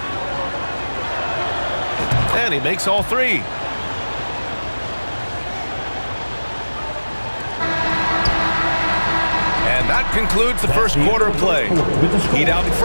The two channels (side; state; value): both; inverted; correlation -1.00